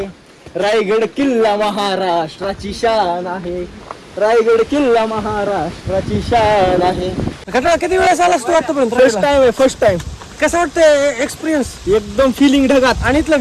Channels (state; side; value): identical; both; correlation 1.00